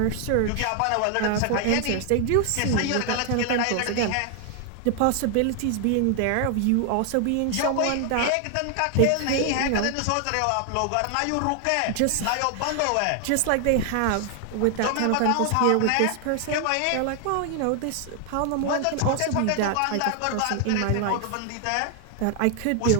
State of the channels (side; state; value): both; different; correlation 0.00